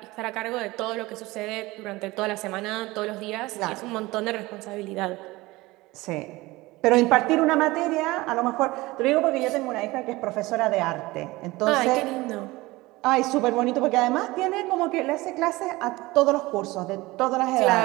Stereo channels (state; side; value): quieter; left; 20.5 dB